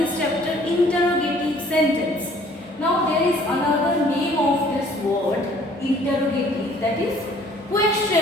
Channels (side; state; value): both; normal; correlation 0.57